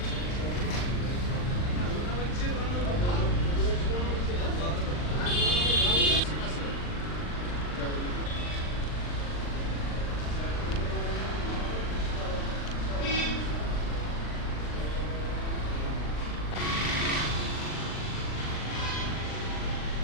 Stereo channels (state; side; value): late; right; 39 ms